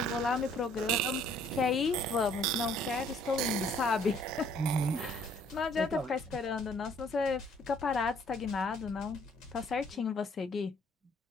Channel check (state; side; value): normal; both; correlation 0.61